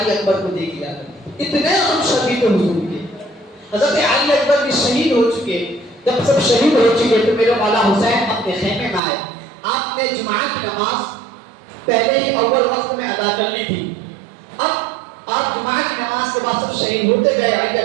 اکبر کو دیکھ لیا کرتے، اتنے ہم شدید حضور کے۔ حضرت علی اکبر بھی شہید ہو چکے، جب سب شہید ہو چکے تو میرے مولا حسین اپنے خیمے میں آئے۔ آپ نے جمعہ کی نماز پہلے ہی اول وقت میں ادا کر لی تھی، اب آپ جمعہ کی نماز کے بعد سب شہید ہوتے گئے، علی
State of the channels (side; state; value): left; drops out; at 9.0 s